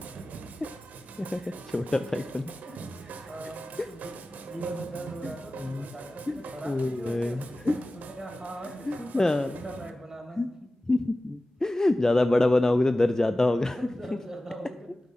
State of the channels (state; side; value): normal; both; correlation 0.96